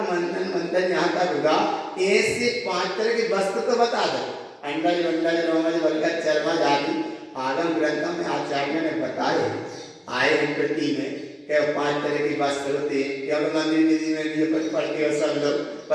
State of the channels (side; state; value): both; identical; correlation 1.00